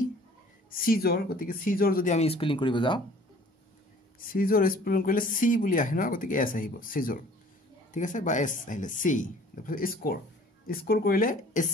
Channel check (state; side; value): normal; both; correlation 0.52